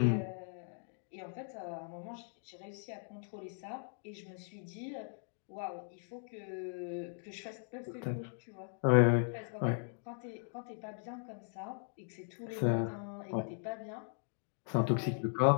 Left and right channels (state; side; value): silent; right; 52 dB below the other